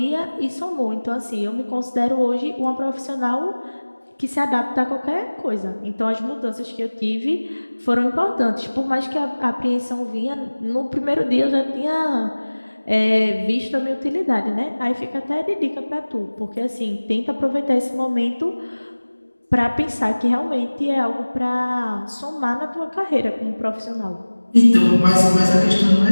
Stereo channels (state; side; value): inverted; both; correlation -1.00